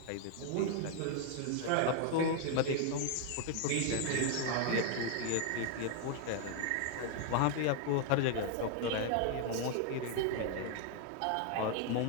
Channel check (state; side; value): different; both; correlation 0.00